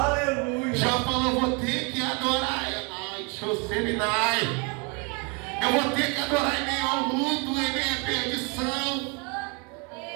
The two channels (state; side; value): quieter; left; 32.2 dB